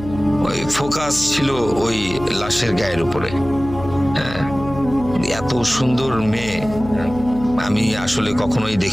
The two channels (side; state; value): left; noise; hum, 12 dB below the sound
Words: ওই ফোকাস ছিল ওই লাশের গায়ের উপরে। হ্যাঁ, এত সুন্দর মেয়ে আমি আসলে কখনোই